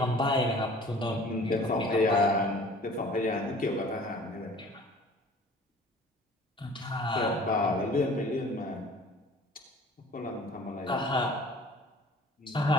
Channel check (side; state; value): both; normal; correlation 0.49